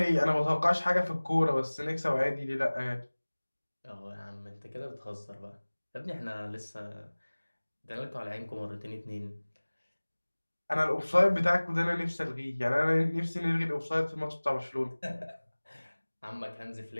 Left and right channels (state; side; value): inverted; both; correlation -1.00